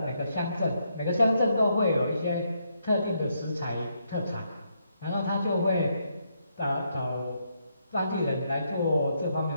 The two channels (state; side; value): inverted; both; correlation -0.77